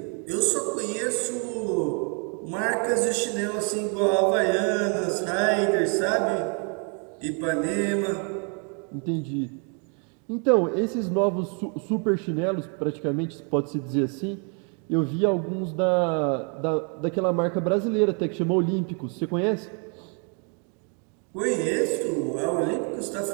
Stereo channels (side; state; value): left; quieter; 38.6 dB